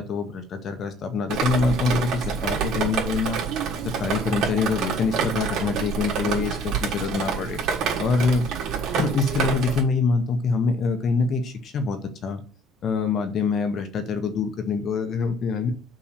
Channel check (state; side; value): normal; both; correlation 0.56